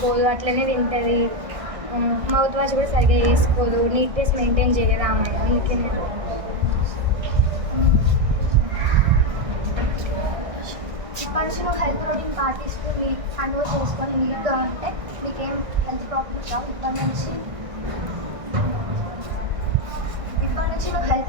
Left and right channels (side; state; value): left; late; 1.6 ms